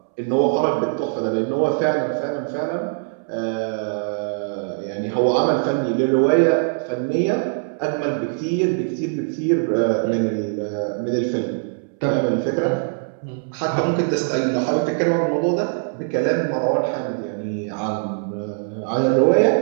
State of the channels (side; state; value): left; silent; 64 dB below the other